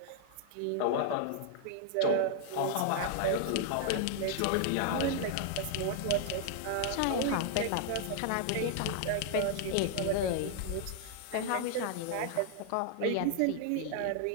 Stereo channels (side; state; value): both; different; correlation 0.00